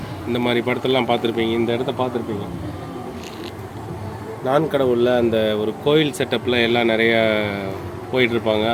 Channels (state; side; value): identical; both; correlation 1.00